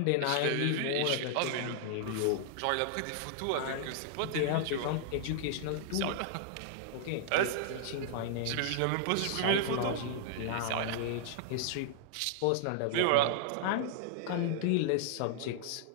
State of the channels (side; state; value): both; different; correlation -0.01